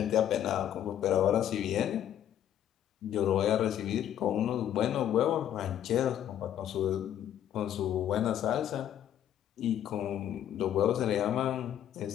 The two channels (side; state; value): right; quieter; 10.7 dB